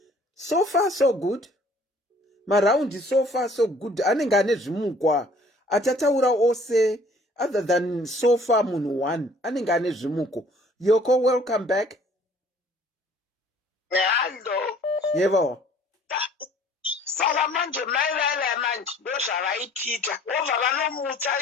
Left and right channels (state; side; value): normal; both; correlation 0.55